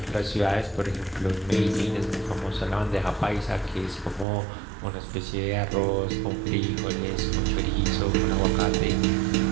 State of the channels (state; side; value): drops out; left; at 4.2 s